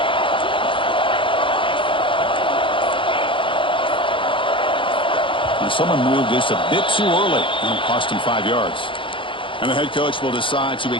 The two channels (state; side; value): late; right; 0.25 ms